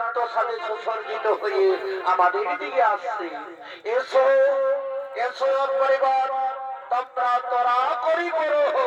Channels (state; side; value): identical; both; correlation 1.00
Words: সাথে সুসজ্জিত হয়ে আমাদের দিকে আসছে। এসো এসো পরিবার, তোমরা তোরা করি করো